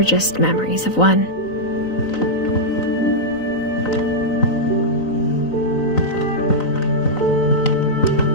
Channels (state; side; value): late; right; 3.9 ms